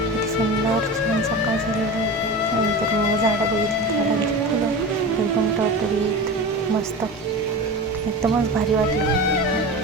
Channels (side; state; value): both; normal; correlation 0.29